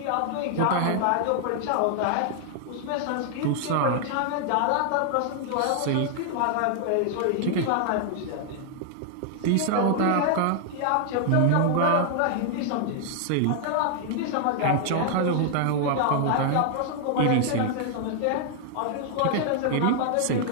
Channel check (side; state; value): both; different; correlation 0.00